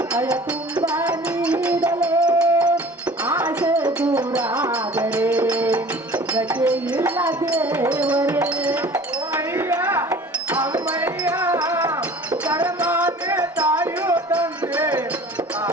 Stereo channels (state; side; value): normal; both; correlation 0.45